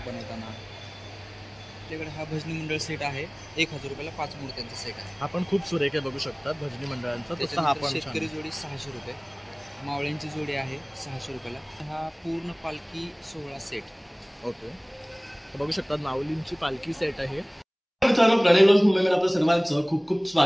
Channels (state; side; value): identical; both; correlation 1.00